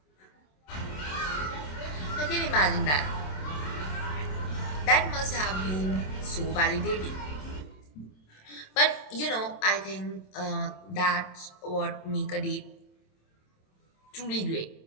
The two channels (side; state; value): right; late; 27 ms